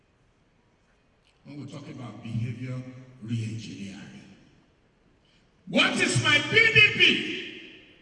When we talk about behavior re-engineering. What is my PDP?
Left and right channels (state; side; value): identical; both; correlation 1.00